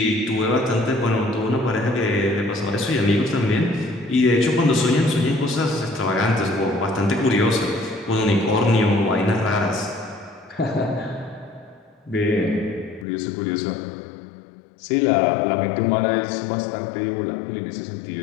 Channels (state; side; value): drops out; right; at 13.1 s